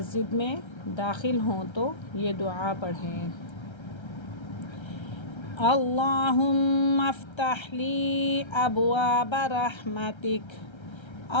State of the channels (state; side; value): late; right; 1.3 ms